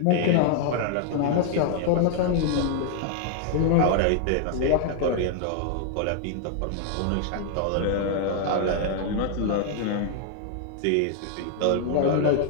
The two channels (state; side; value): different; both; correlation 0.00